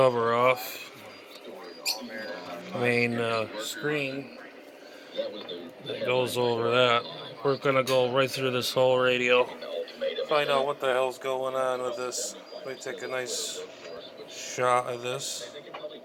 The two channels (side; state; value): both; identical; correlation 1.00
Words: off. Main screen that goes over that. We're gonna go right through this whole radio, find out what the hell's going on with this. Let me take a nice shot of this.